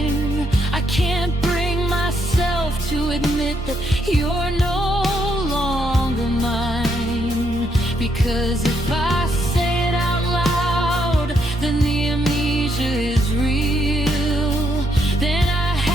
I can't bring myself to admit that you're no longer mine, because if I say it out loud, then the amnesia is real. Then I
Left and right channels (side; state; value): both; normal; correlation 0.75